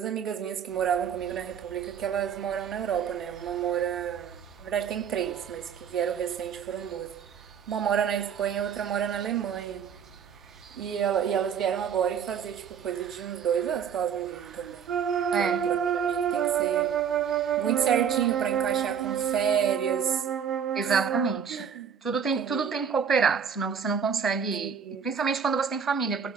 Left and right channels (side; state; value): left; quieter; 7.5 dB